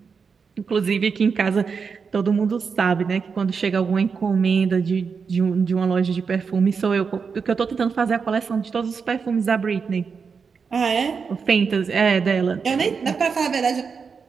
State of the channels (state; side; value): quieter; left; 5.6 dB